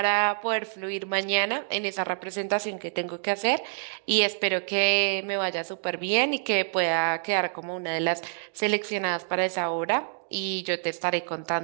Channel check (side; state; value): left; silent; digital silence